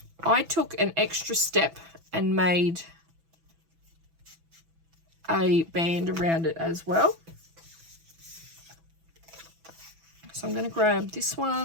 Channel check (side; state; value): left; late; 6.1 ms